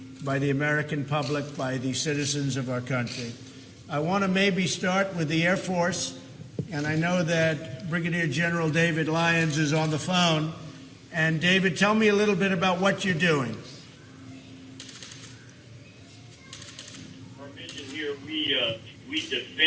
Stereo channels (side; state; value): both; identical; correlation 1.00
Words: by the American public, by the citizens of our country. I want to maybe start with the Air Force, and I know that Brigadier General David Lyons is on the phone. And David, tell me a little bit about what you're doing. Our mission here, we